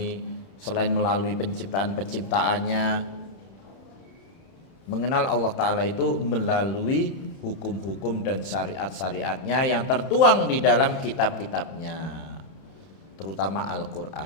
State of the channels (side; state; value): right; late; 31 ms